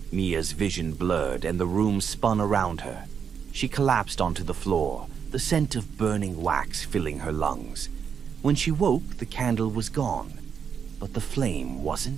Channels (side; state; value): left; quieter; 7.1 dB